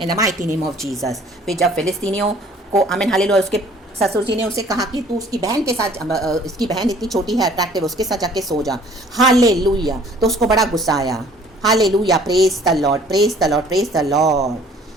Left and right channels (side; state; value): both; normal; correlation 0.54